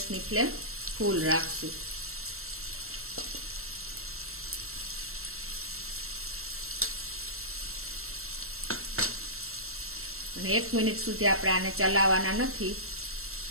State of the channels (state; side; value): late; left; 0.62 ms